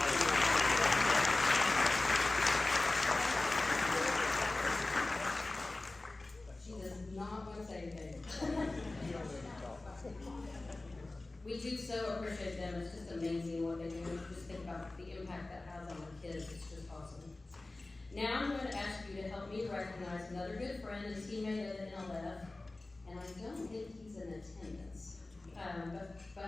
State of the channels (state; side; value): quieter; right; 3.0 dB